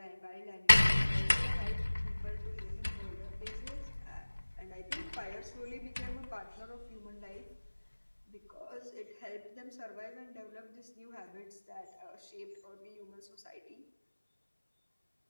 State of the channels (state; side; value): inverted; both; correlation -1.00